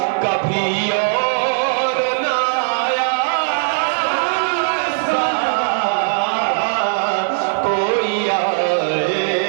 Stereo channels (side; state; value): left; silent; 57 dB below the other